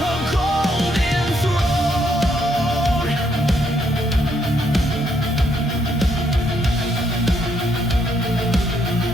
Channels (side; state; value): both; normal; correlation 0.73